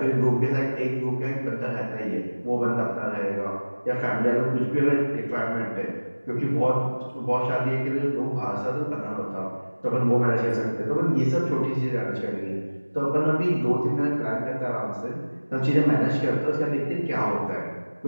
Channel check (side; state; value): both; inverted; correlation -1.00